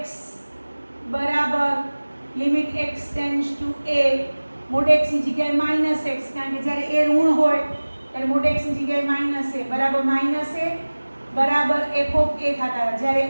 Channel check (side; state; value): both; inverted; correlation -1.00